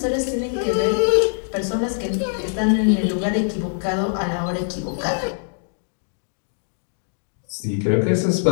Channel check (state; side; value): silent; right; digital silence